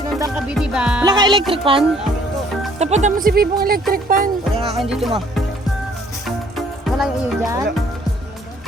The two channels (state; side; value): normal; both; correlation 0.60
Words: ka, B, di ba? Wala ka electric fan? Tapatan mo si Bibong electric fan. Wala nga kayo dito, ma. Wala yung iyo dyan? Wala.